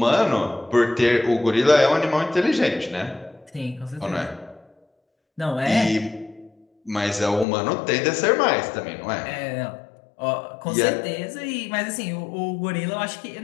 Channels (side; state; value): right; drops out; at 7.5 s